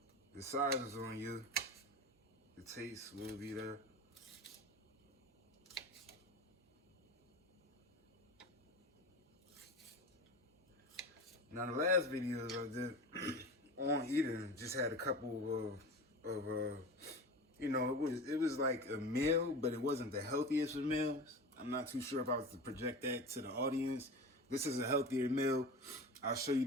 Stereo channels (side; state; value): both; normal; correlation 0.31